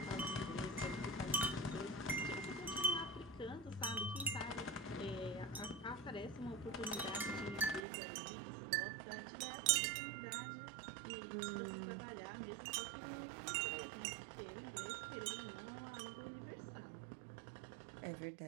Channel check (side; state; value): left; drops out; at 7.9 s